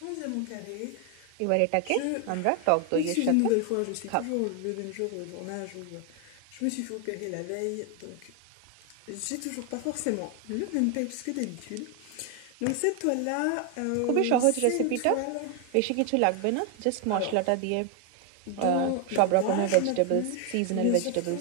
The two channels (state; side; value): different; both; correlation 0.01